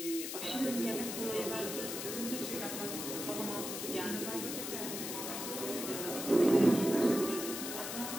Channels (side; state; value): left; noise; hiss, 5 dB below the sound